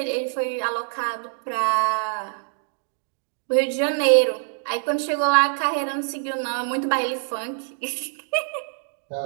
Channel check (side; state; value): left; silent; digital silence